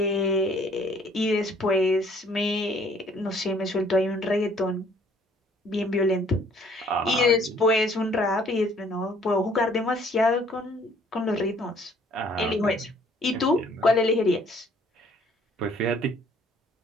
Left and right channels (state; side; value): normal; both; correlation 0.60